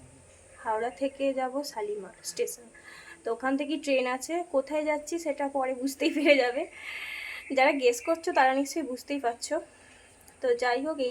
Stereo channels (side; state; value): both; identical; correlation 1.00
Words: হাওড়া থেকে যাব শালিমার স্টেশন। তো ওখান থেকে ট্রেন আছে, কোথায় যাচ্ছি সেটা পরে বুঝতেই পেরে যাবে। যারা গেস করছো তারা নিশ্চয়ই বুঝতেই পারছো। তো যাই হোক,